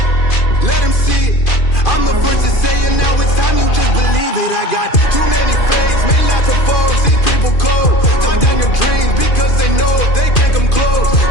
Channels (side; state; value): right; late; 2.4 ms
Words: Let them see it. I'm the first to say it, now it's time you just believe it. I got too many fakes, made lots of foes. These people cold. Talk down your dreams because they know they can't come close.